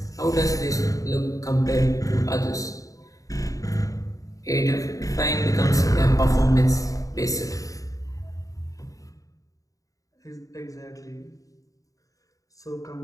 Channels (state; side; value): late; right; 0.16 ms